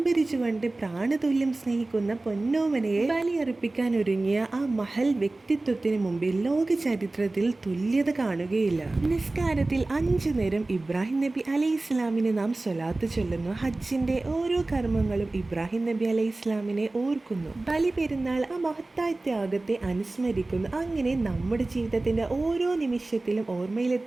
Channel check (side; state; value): left; quieter; 3.0 dB